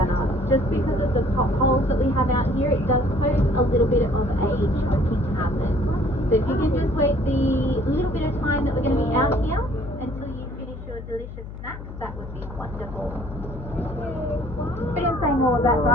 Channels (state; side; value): noise; left; hum, 11 dB below the sound